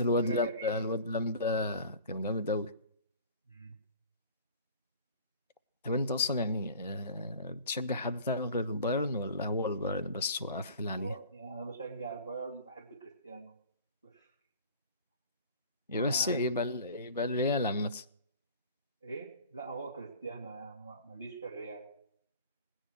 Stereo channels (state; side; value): inverted; both; correlation -0.43